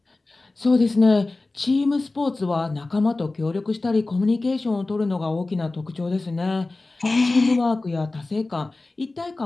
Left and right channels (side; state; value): right; quieter; 3.2 dB